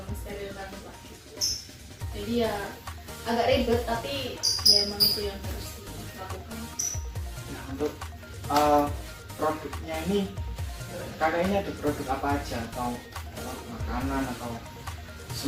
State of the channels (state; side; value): identical; both; correlation 1.00